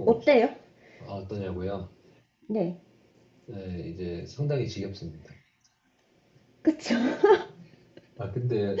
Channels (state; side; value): identical; both; correlation 1.00